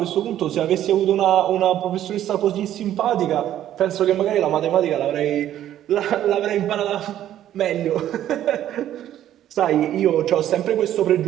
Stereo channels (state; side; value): quieter; left; 11.9 dB